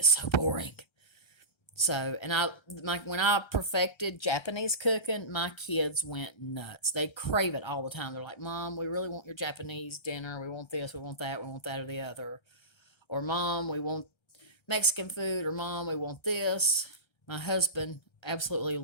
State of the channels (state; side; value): late; right; 1.3 ms